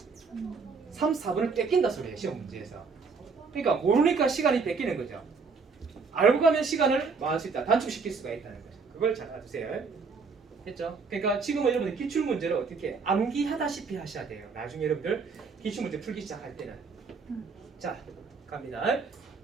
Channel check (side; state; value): left; quieter; 4.9 dB